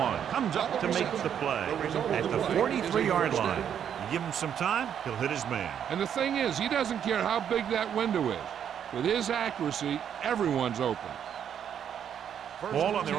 comes up to make the play at the 43-yard line. You give him some time, he'll hit his man. And the thing is, he doesn't care how big that window is. With his accuracy, everyone's open. Ball on their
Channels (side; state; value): left; quieter; 8.8 dB